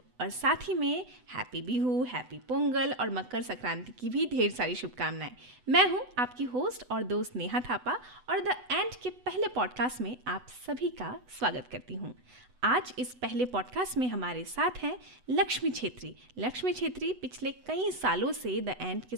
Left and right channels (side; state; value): left; late; 8.0 ms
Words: और साथ ही में हैप्पी बिहू, हैप्पी पोंगल और मकर संक्रांति की भी ढेर सारी शुभकामनाएं। मैं हूं आपकी होस्ट और दोस्त नेहा थापा, और द एंड के पहले पॉडकास्ट में आप सभी का स्वागत करती हूं। आज इस पहले पॉडकास्ट में हमारे साथ हैं लक्ष्मी छेत्री पिछले कई सालों से द एंड के